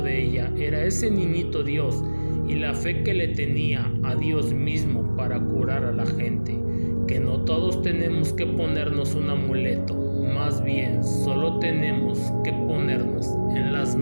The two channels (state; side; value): inverted; both; correlation -1.00